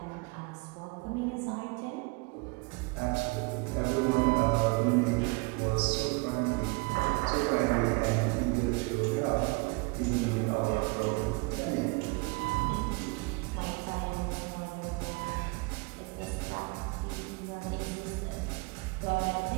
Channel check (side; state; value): left; quieter; 28.6 dB